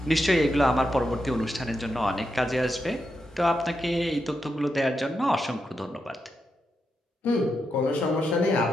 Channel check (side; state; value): both; normal; correlation 0.85